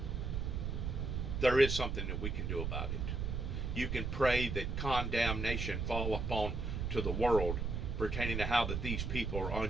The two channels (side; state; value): right; noise; rumble, 2 dB below the sound